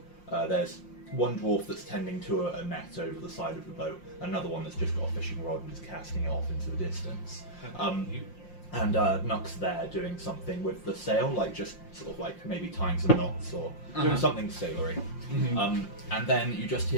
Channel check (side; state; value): right; late; 5.7 ms